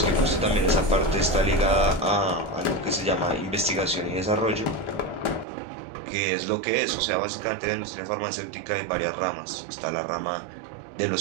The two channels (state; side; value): drops out; left; at 5.5 s